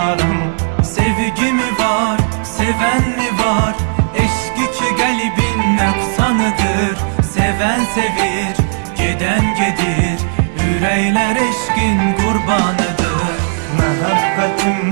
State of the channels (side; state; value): left; silent; digital silence